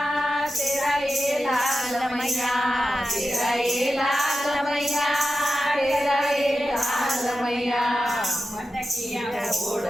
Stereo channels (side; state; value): both; normal; correlation 0.92